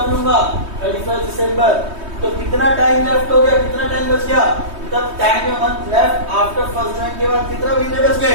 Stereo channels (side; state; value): left; late; 3.2 ms